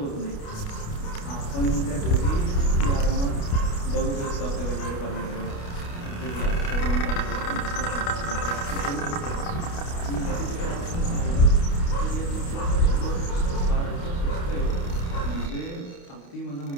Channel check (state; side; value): late; right; 29 ms